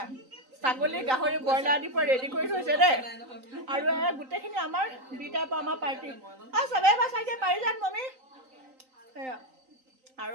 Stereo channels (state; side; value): late; left; 3.9 ms